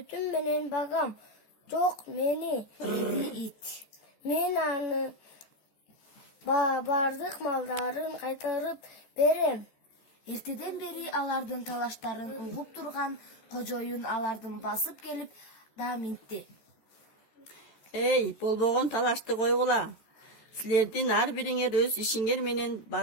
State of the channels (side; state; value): right; late; 14 ms